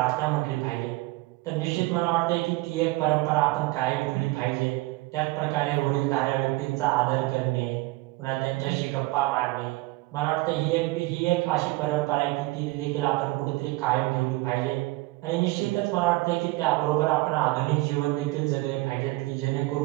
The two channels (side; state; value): left; quieter; 21.1 dB